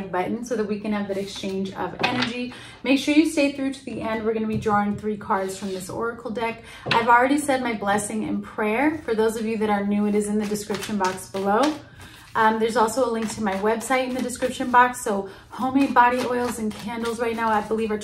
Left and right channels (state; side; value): identical; both; correlation 1.00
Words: button so that we can have that exchange of energy. Make sure you stay through to the end. We're going to be drawing 3 cards from this oracle deck. I've already said my blessing and prayer. For those of you that are new, it is in the description box below. There's also a link to my website in the description box. So homemade body oils and candles right now, I believe, are